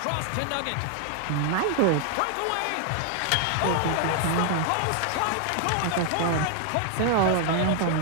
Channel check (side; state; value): both; different; correlation 0.00